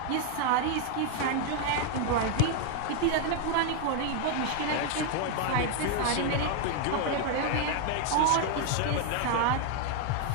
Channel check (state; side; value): different; both; correlation 0.00